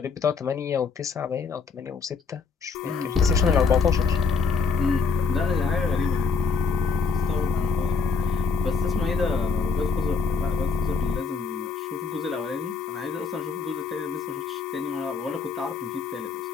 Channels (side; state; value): right; quieter; 5.0 dB